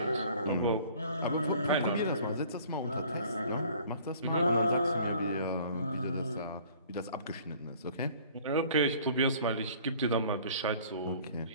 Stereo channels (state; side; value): inverted; both; correlation -0.51